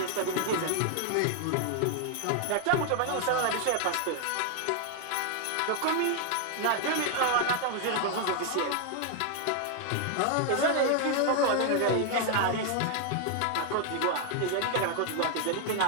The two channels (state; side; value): different; both; correlation 0.00